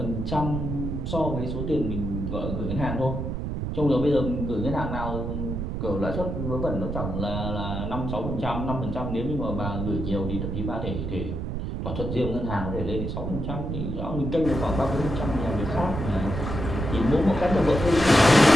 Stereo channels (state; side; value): noise; right; rumble, 3 dB below the sound